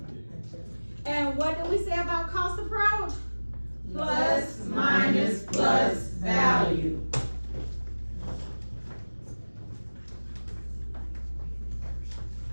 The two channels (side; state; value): both; inverted; correlation -1.00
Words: And what do we say about cost approach? Plus, minus, plus, value.